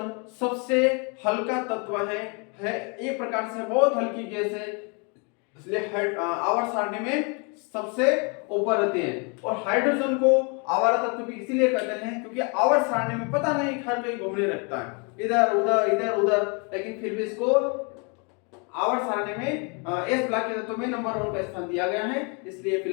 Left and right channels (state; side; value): quieter; right; 34.2 dB